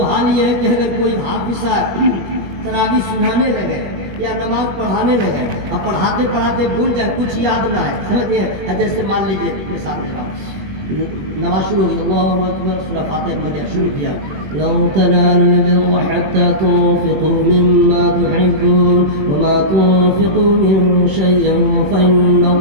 हाल ये है कि अगर कोई हाफिज तरावी सुनाने लगे या नमाज पढ़ाने लगे, अब पढ़ाते पढ़ाते भूल जाए, कुछ याद ना है, समझिए। जैसे मान लीजिए मिसाल दे रहा हूँ, नमाज शुरू हो गई, अल्लाहु अकबर, सूरह फातिहा पढ़ शुरू किया, लं तनालुल बिर्रा हत्ता तुन्फिकू मिम्मा तुहिब्बून वमा तुन्फिकू मिन शैइन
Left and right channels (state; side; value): late; left; 21 ms